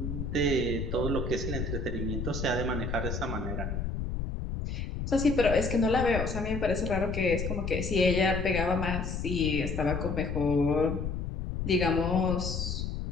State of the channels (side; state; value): left; noise; rumble, 3 dB below the sound